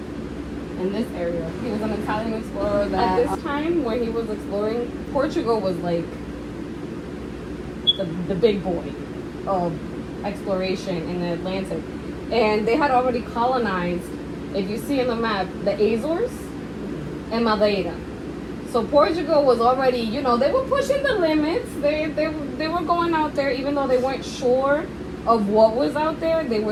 in this area. He was an Italian explorer that at this time when he was exploring, Portugal was like the big boy of exploration in the Atlantic. And they had already colonized, if you see in the map, the Azores and Madeira. So Portugal was already, you know, they were pushing the limits. They were going out there, even though they weren't sure of what was out there. They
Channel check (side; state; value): both; identical; correlation 1.00